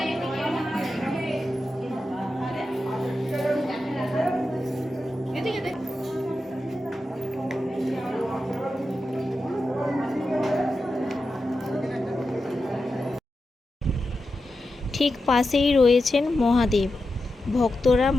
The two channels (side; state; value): both; normal; correlation 0.90